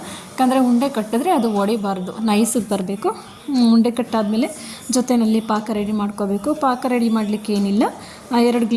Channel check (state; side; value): identical; both; correlation 1.00